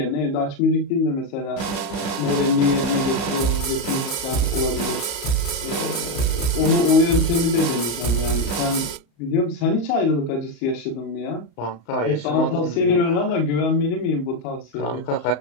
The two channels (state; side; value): late; right; 35 ms